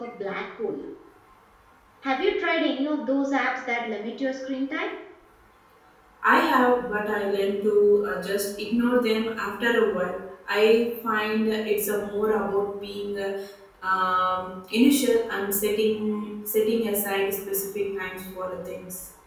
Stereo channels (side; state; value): both; identical; correlation 1.00